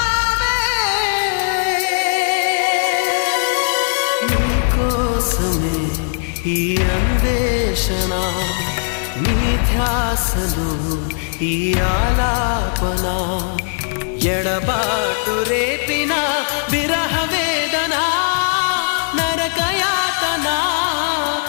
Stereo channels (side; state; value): right; silent; digital silence